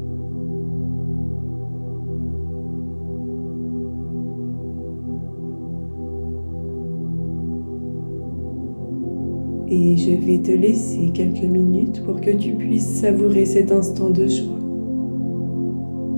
Et je vais te laisser quelques minutes pour que tu puisses savourer cet instant de joie,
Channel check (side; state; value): both; inverted; correlation -1.00